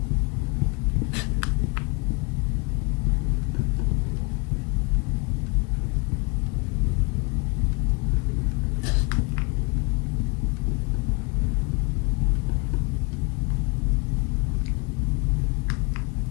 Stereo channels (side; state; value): right; quieter; 29.8 dB